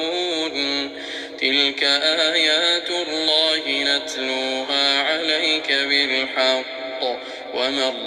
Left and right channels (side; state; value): both; identical; correlation 1.00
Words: تلك آيات الله نتلوها عليك بالحق، وما